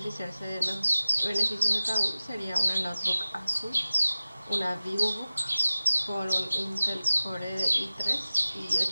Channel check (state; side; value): inverted; both; correlation -0.96